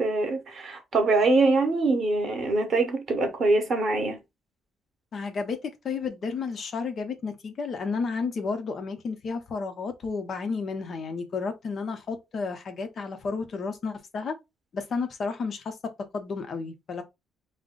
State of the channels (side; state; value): both; normal; correlation 0.75